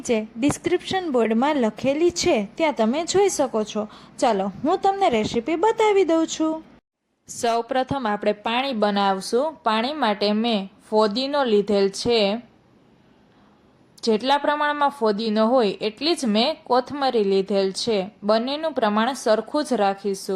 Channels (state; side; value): identical; both; correlation 1.00